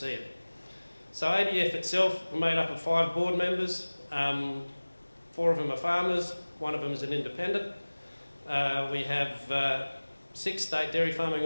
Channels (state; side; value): inverted; both; correlation -1.00